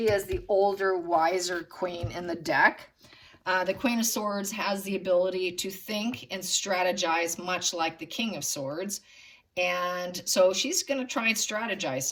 is the older, wiser queen in the deck. The Queen of Swords has the ability to think and strategize much like the King of Swords. And so she's going to try and strategize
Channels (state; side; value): identical; both; correlation 1.00